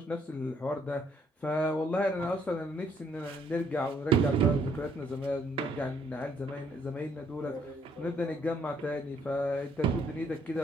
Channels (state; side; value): normal; both; correlation 0.67